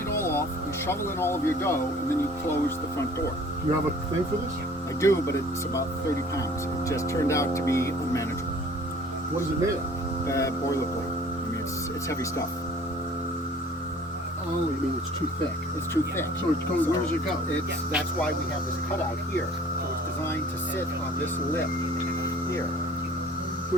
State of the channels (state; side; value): normal; both; correlation 0.51